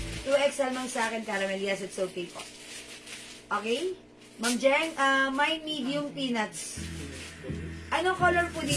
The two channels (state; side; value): identical; both; correlation 1.00